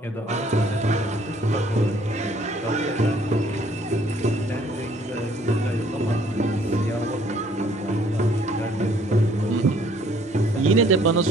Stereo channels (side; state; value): both; normal; correlation 0.61